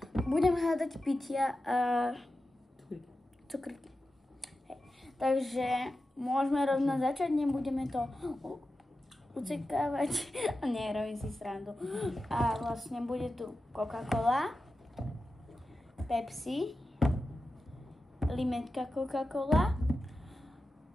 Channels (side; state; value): both; normal; correlation 0.92